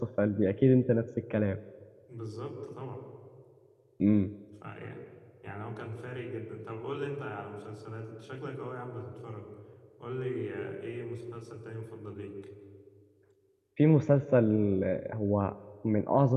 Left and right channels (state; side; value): identical; both; correlation 1.00